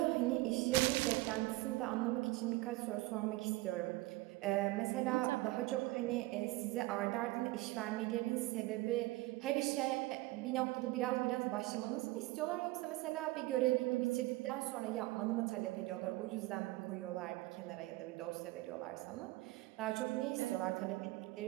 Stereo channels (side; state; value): left; quieter; 20.2 dB